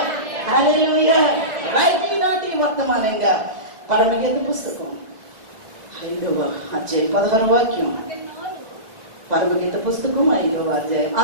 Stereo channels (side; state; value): left; late; 2.0 ms